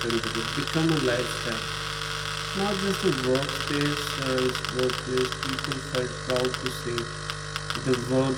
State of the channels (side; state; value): both; identical; correlation 1.00